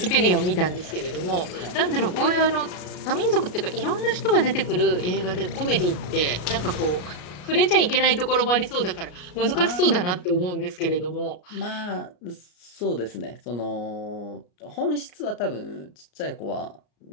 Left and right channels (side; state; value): right; late; 33 ms